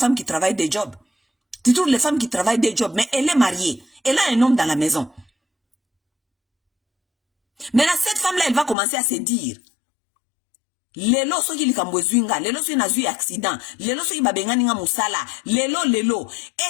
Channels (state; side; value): drops out; right; at 8.8 s